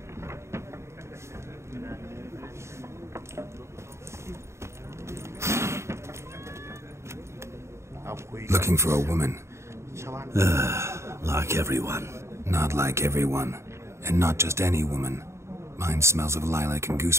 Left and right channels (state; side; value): late; left; 0.13 ms